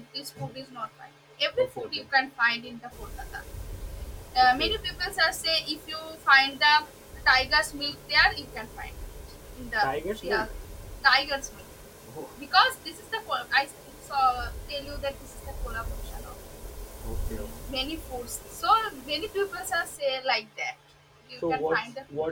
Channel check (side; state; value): both; identical; correlation 1.00